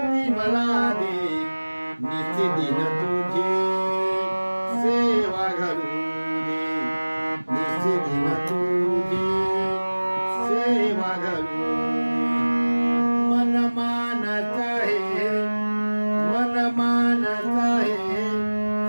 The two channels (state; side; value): inverted; both; correlation -1.00